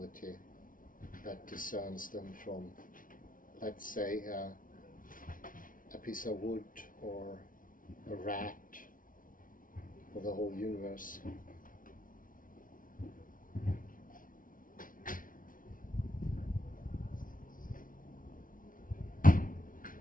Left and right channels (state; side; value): late; right; 0.39 ms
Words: that discerns them from, let's say, a piece of wood or a rat or the whole universe.